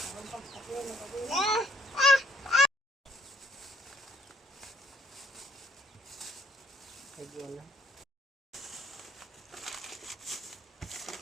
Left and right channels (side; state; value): both; normal; correlation 0.65